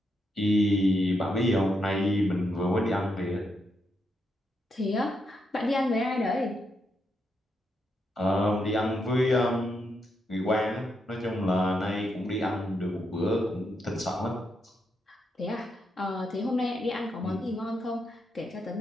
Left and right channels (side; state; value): both; normal; correlation 0.81